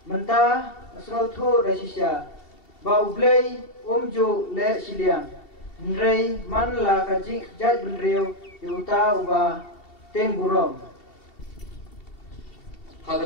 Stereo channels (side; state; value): right; late; 2.7 ms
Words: mentah asrotu dasisya, bau blay umju le siliang, Henry man la kajik jat benriu yuta ubah Teng burom.